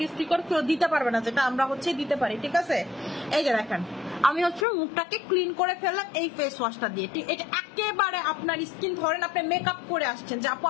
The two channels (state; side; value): drops out; right; at 4.7 s